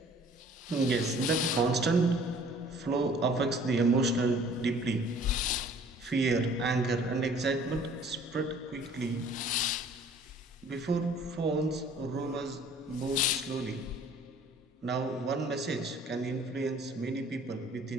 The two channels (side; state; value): both; normal; correlation 0.53